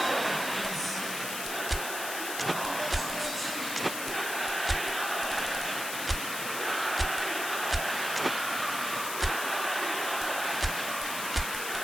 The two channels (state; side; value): noise; left; hiss, 5 dB below the sound